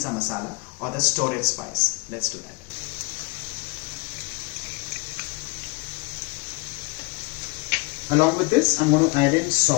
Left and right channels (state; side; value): quieter; right; 28.2 dB